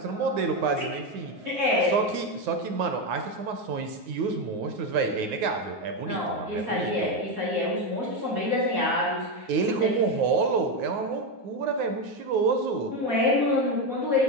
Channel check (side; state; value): left; late; 9.5 ms